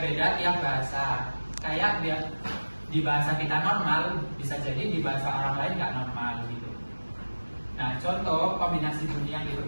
tiap bahasa. Kayak di bahasa kita normal bisa jadi di bahasa orang lain nggak normal gitu. Nah, contoh kombinasi bunyi yang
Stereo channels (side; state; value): both; inverted; correlation -1.00